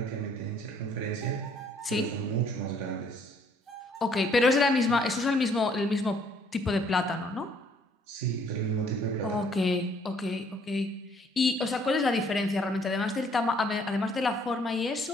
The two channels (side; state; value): both; normal; correlation 0.63